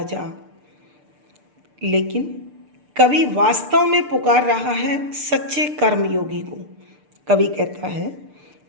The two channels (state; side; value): late; left; 6.7 ms